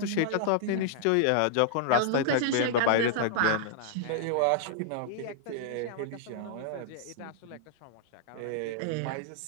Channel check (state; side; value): different; both; correlation -0.01